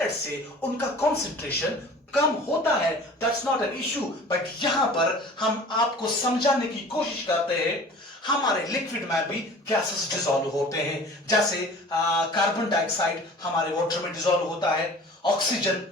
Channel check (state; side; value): normal; both; correlation 0.44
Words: से उनका कॉन्सेंट्रेशन कम होता है, that's not an issue, but यहां पर हम आपको समझाने की कोशिश करते हैं हमारे लिक्विड में भी गैसेस डिसॉल्व होते हैं। जैसे कार्बन डाइऑक्साइड हमारे वाटर में डिसॉल्व होता है, ऑक्सीजन